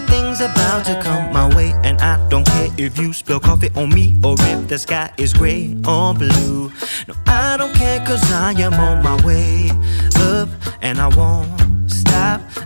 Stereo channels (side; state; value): both; inverted; correlation -1.00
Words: about to come my way, and I don't care if you spill coffee on me or if the sky is gray or blue. No, I don't care, cause I am on my way up, and I won't stop,